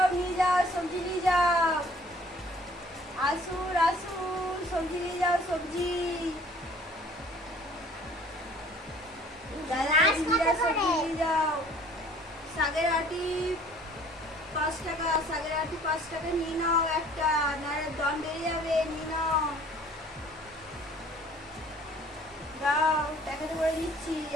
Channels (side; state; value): both; normal; correlation 0.54